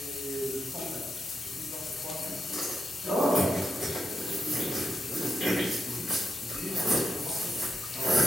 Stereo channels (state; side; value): normal; both; correlation 0.83